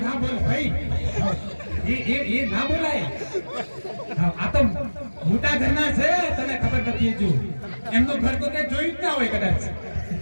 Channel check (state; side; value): inverted; both; correlation -1.00